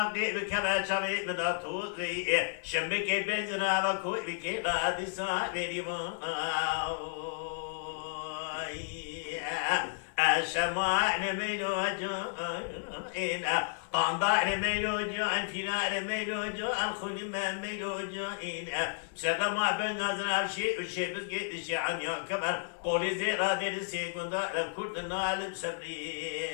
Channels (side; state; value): right; silent; digital silence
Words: بکبه چاوی بدا توقی شنبه که بزرا بکوی بکی قادسا بیری الشمال ميلو جان قندار ميلو جان فنار ميلو جان خلما ميلو جان سقما بالنظر بشيء وشيء بس قيد الشعن يا كبر قولي زيرا دير سيكون دار كردنا علم سبري